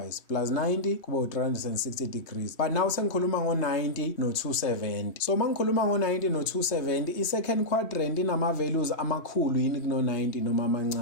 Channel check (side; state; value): right; late; 3.1 ms